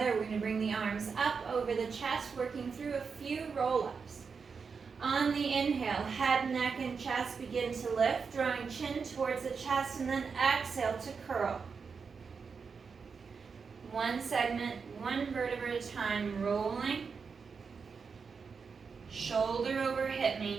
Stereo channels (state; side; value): quieter; left; 5.5 dB